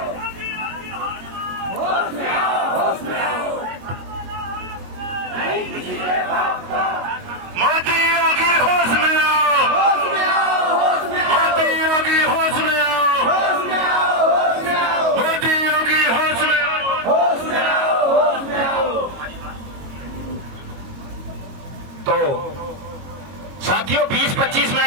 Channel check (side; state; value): left; late; 22 ms